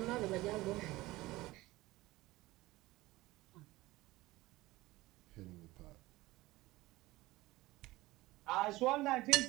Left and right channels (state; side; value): quieter; left; 19.0 dB